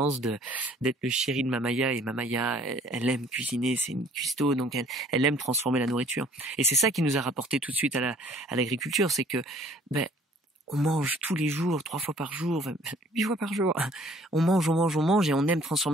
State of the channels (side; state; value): both; normal; correlation 0.56